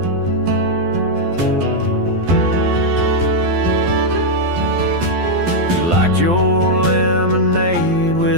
You liked your lemonade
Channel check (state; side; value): late; left; 12 ms